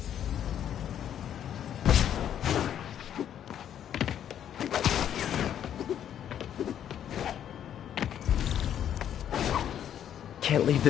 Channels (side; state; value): right; quieter; 9.9 dB